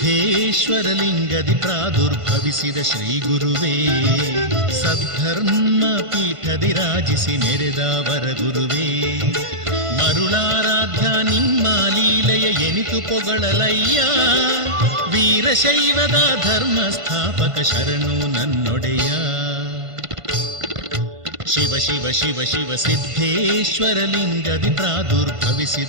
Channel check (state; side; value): late; left; 1.5 ms